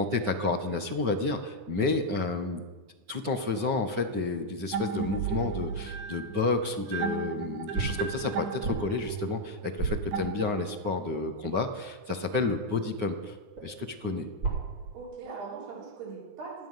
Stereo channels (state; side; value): late; left; 9.6 ms